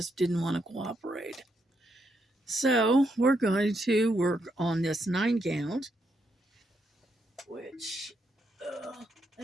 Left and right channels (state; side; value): normal; both; correlation 0.79